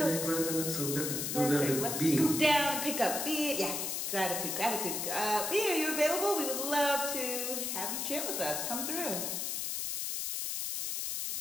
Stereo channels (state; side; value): noise; left; hiss, 2 dB below the sound